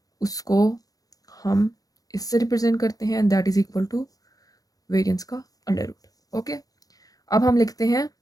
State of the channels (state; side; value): late; right; 0.18 ms